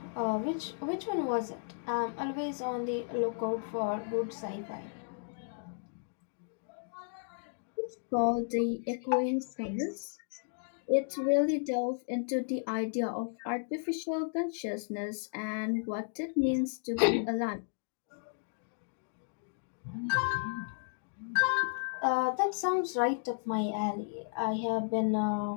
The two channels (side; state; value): right; silent; digital silence